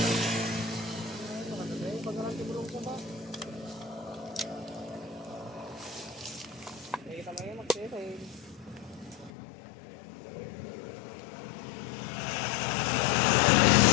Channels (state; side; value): drops out; right; at 9.3 s